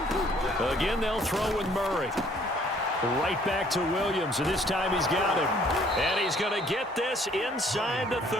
Again, they'll throw with Murray. Right back to Williams, and this time he's got him. And he's going to get this inside the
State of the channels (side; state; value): both; normal; correlation 0.60